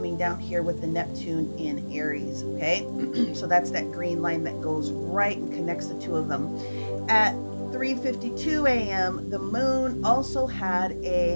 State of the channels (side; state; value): both; inverted; correlation -1.00